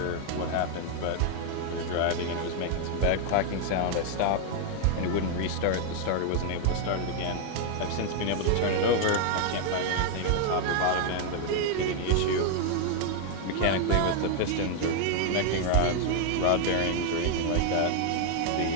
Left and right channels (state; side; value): different; both; correlation 0.00